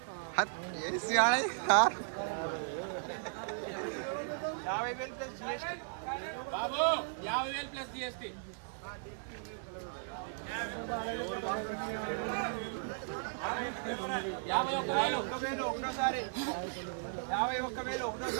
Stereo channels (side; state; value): left; silent; digital silence